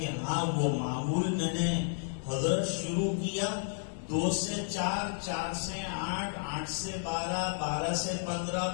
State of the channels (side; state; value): right; silent; 56 dB below the other